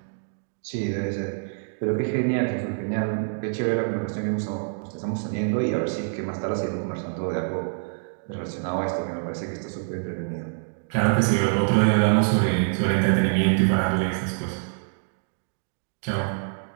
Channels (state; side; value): silent; left; digital silence